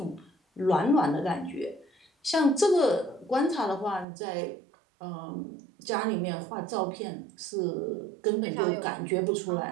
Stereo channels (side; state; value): left; drops out; at 4.0 s